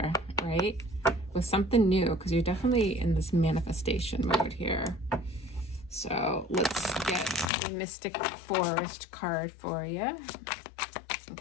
right? With something new, because you're definitely in this manifestation mode here. So let's get the Mystic Forest card for you. And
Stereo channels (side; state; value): right; drops out; at 7.5 s